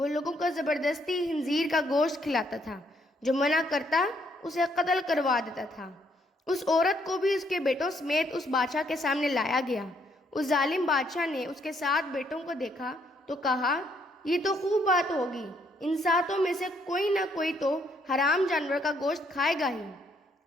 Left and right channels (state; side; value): normal; both; correlation 0.70